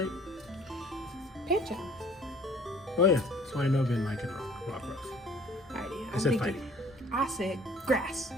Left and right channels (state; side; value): normal; both; correlation 0.53